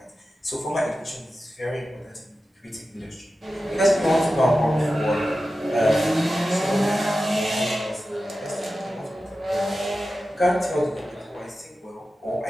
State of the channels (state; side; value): normal; both; correlation 0.93